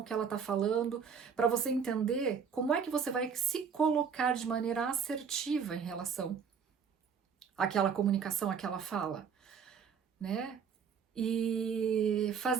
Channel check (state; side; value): quieter; left; 6.7 dB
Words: que ela está falando, para você entender como é que você vai se colocar de maneira assertiva em relação àquela comunicação, àquela fala, né? E